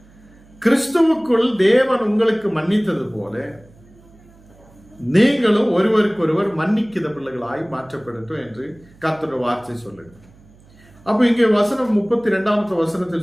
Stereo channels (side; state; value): right; noise; hum, 27 dB below the sound